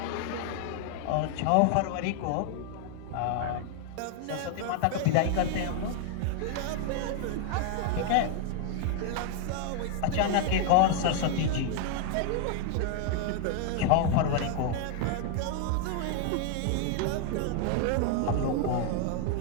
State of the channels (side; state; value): both; different; correlation 0.00